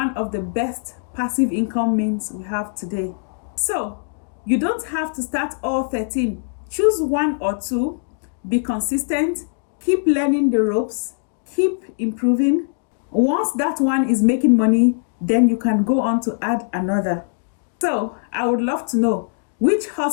of the best passive income means we have today. So you don't have to start all 13. Choose 1 or 2, be consistent, keep learning the ropes, keep improving. Once that one is making money, then you can go on to add another. So I would love to know, which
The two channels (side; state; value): right; silent; digital silence